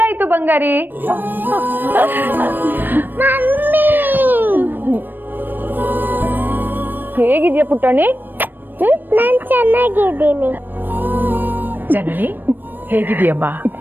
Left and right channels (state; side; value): late; left; 0.093 ms